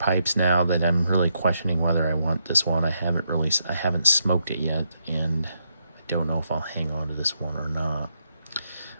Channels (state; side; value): inverted; both; correlation -0.79